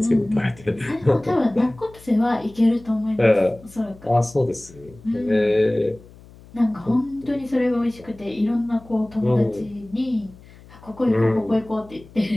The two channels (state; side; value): noise; left; hum, 22 dB below the sound